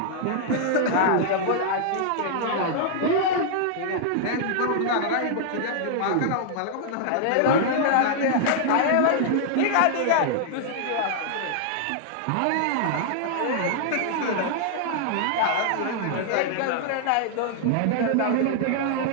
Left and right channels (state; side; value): different; both; correlation -0.01